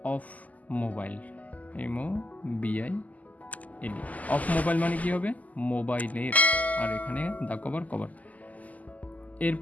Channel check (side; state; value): right; late; 0.076 ms